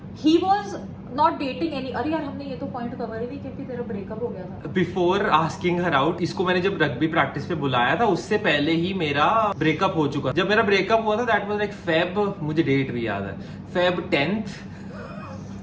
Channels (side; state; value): both; identical; correlation 1.00